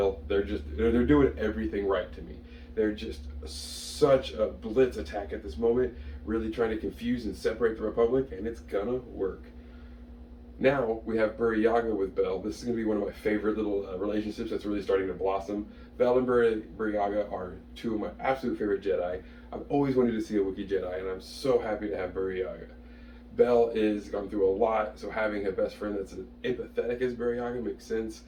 They're doing everything right to me. They're just such a blitz attack at this moment, really trying to confuse and separate the Republic, and it's gonna work. Now we have Burryaga with Bel. This is going to be one of my favorite little relationships that's really starting to blossom. Bel and Burryaga are two of my absolute favorite Jedi. I've always wanted to see a Wookiee Jedi, and I'm so happy to have Burryaga. Bel is gone through a lot, so having a best friend that's as empathetic as Burryaga makes sense,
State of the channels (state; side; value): identical; both; correlation 1.00